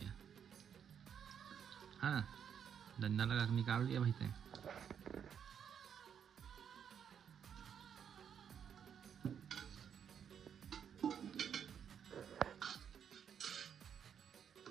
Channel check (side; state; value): left; quieter; 8.1 dB